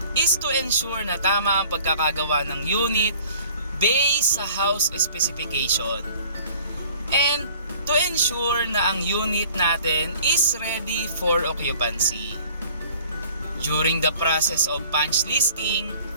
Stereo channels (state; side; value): inverted; both; correlation -0.51